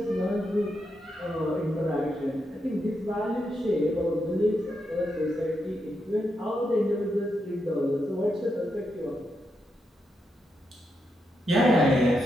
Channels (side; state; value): both; normal; correlation 0.83